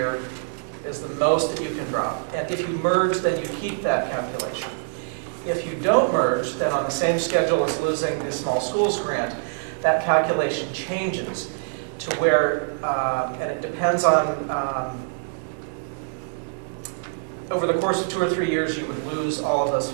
is the most that you can drop. And if you merge, then you keep that calculation. If you don't merge, then on the same schedule as losing the small schools grant, that calculation changes to where, and it depends on, over the course of 2 or 3 years, you would lose all of those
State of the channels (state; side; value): silent; left; digital silence